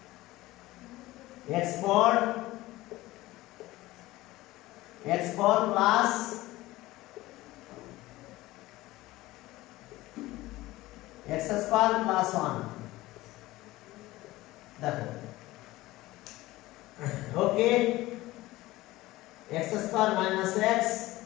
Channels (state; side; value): quieter; right; 18.1 dB